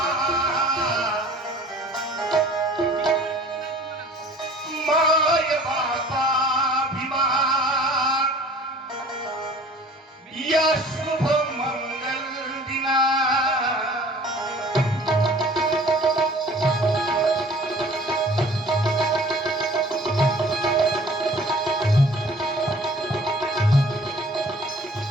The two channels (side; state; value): both; normal; correlation 0.48